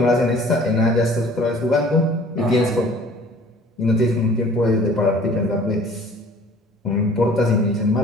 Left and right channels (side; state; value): both; normal; correlation 0.50